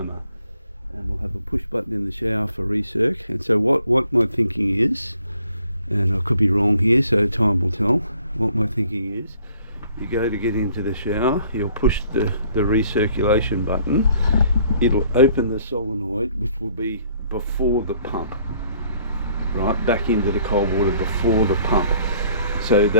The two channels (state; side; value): inverted; both; correlation -0.60